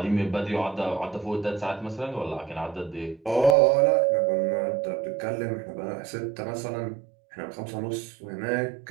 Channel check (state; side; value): drops out; left; at 3.6 s